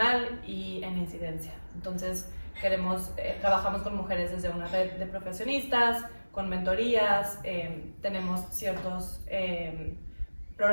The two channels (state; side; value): inverted; both; correlation -1.00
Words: y en incidencia. Entonces trabajamos con mujeres desde una red de profesionistas, con mentorías, tenemos ciertos